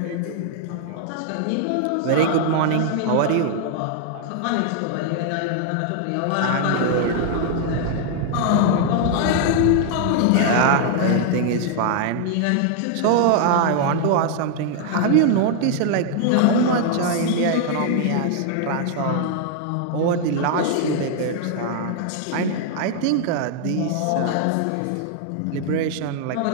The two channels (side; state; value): both; different; correlation 0.00